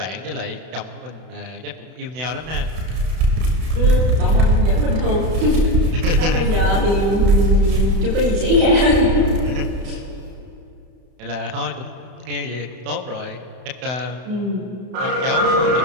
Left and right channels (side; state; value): left; late; 32 ms